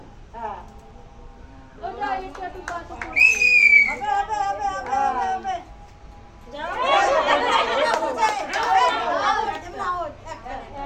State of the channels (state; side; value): identical; both; correlation 1.00